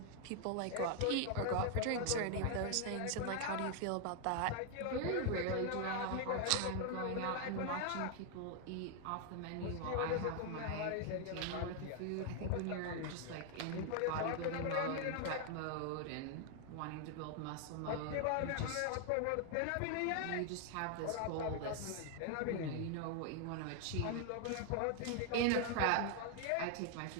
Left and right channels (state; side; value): different; both; correlation 0.00